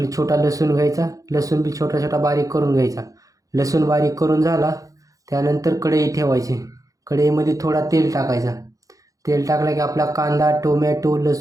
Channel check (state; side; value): late; left; 0.17 ms